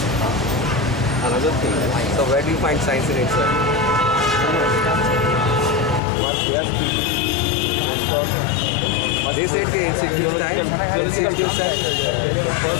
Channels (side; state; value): right; drops out; at 6.0 s